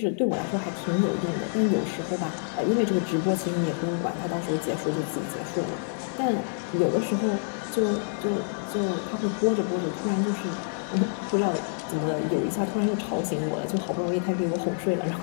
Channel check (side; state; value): right; silent; 55 dB below the other